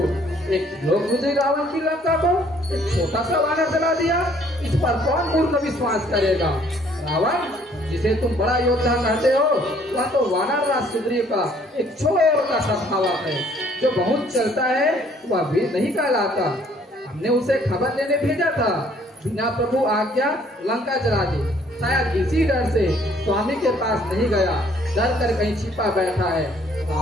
एक लोग मुझे रावण की लंका को एक छोटा सा वानर जला दिया, इस पर कौन मूर्ख विश्वास करेगा? रावण, जिसे तुम बड़ा योद्धा कहते हो, वह तो वानर राज सुग्रीव का एक छोटा सा भावा है, जो बहुत चलता है वह भी नहीं कहलाता। हमने उसे खबर लेने भेजा था, बिना प्रभु आज्ञा लंका जला दी। शायद इसी डर से स्वामी के पास नहीं गया, डर कर कहीं छिपा बैठा है।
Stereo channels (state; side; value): normal; both; correlation 0.61